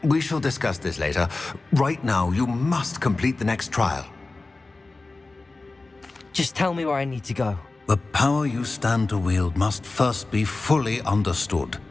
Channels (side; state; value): right; quieter; 3.4 dB